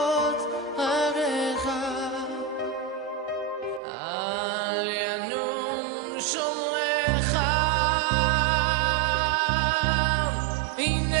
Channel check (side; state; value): left; drops out; at 3.8 s